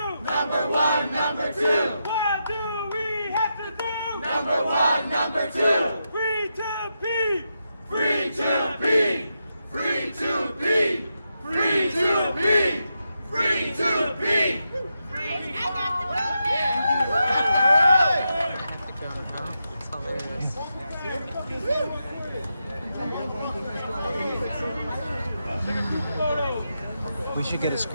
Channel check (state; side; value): inverted; both; correlation -0.86